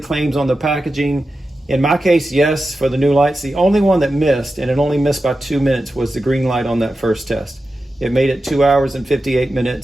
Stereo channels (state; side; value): normal; both; correlation 0.91